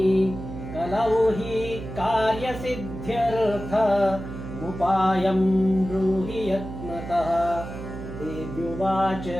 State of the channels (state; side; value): noise; right; hum, 9 dB below the sound